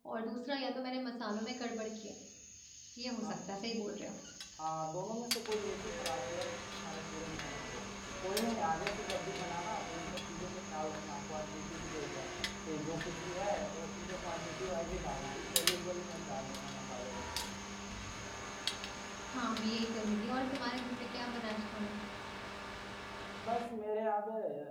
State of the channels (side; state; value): both; identical; correlation 1.00